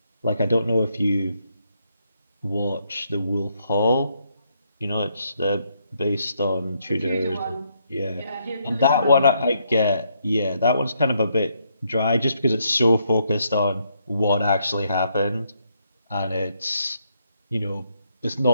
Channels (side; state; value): both; inverted; correlation -0.75